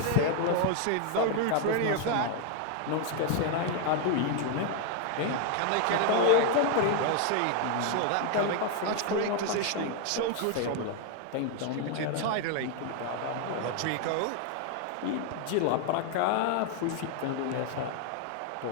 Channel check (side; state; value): both; different; correlation 0.01